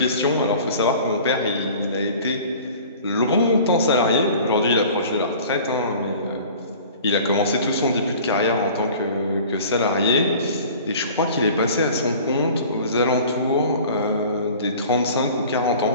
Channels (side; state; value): both; inverted; correlation -0.44